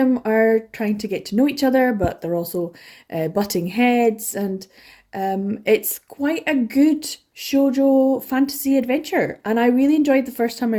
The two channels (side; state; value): both; identical; correlation 1.00